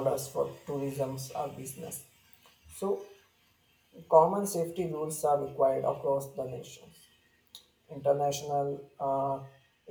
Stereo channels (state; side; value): identical; both; correlation 1.00